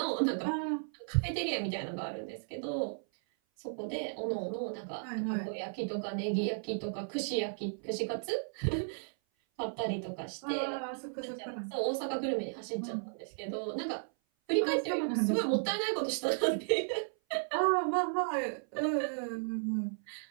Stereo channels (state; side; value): silent; left; 55 dB below the other